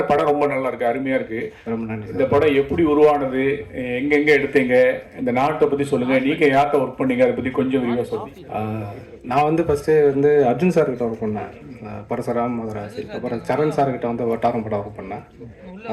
படம் ரொம்ப நல்லா இருக்கு, அருமையா இருக்கு. ரொம்ப நன்றி. இந்த படம் எப்படி உருவானது, எங்கெங்க எடுத்தீங்க, இந்த நாட்டை பத்தி சொல்லுங்க, நீங்க யார்கிட்ட ஒர்க் பண்ணீங்க, அதை பத்தி கொஞ்சம் விரிவாக சொல்லுங்க. நான் வந்து ஃபர்ஸ்ட் வந்து அர்ஜுன் சார் கிட்ட ஒர்க் பண்ணேன், பரசுராம் மதராசி. அப்புறம் சரண் சார் கிட்ட வந்து வட்டாரம் படம் ஒர்க் பண்ணேன்.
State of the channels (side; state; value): both; identical; correlation 1.00